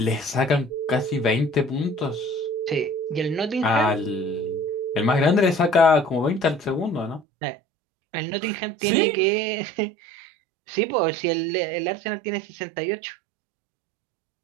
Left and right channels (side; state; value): left; drops out; at 7.2 s